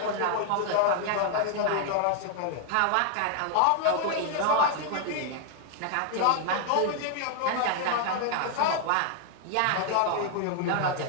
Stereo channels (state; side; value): different; both; correlation 0.00